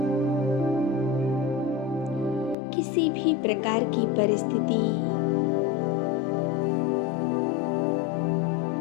किसी भी प्रकार की परिस्थिति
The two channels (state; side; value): drops out; right; at 2.6 s